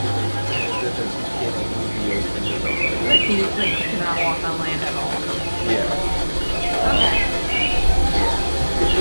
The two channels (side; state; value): both; inverted; correlation -1.00